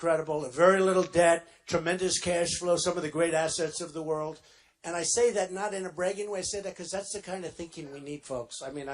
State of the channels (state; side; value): identical; both; correlation 1.00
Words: Very little debt, tremendous cash flow, some of the great assets of the world. And I say that not in a bragging way. I say that because that's the kind of thinking we need, folks. I mean,